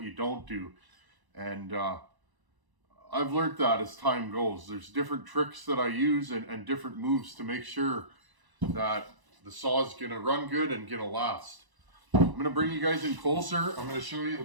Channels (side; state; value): left; late; 1.0 ms